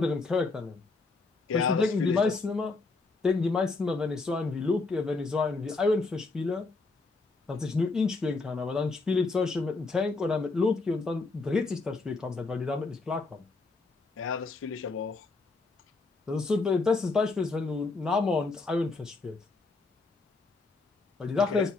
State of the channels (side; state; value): right; quieter; 3.7 dB